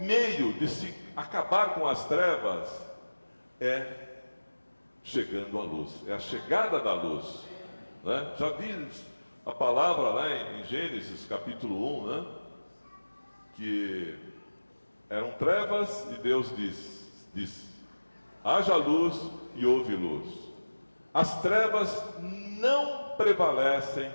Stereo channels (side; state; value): both; inverted; correlation -1.00